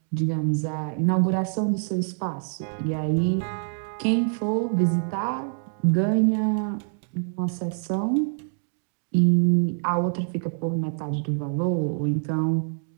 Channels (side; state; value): left; silent; 61 dB below the other